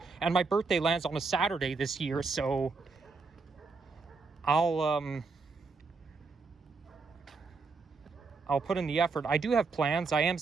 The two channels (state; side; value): quieter; left; 4.3 dB